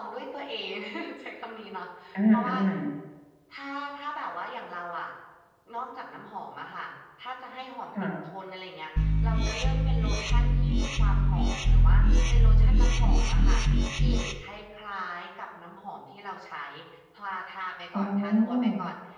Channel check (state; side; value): identical; both; correlation 1.00